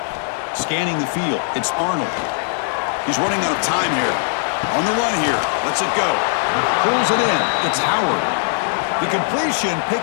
Scanning the field, it's Arnold. He's running out of time here. On the run here, lets it go. Pulls it in, it's Howard. The completion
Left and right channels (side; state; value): right; silent; digital silence